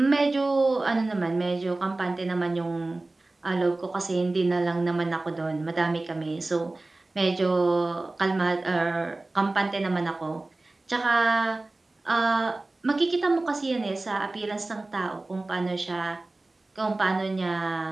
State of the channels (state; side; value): quieter; left; 3.0 dB